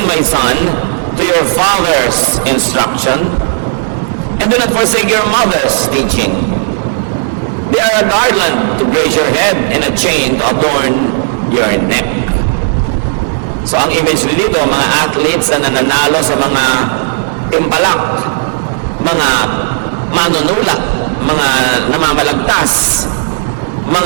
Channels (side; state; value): left; silent; digital silence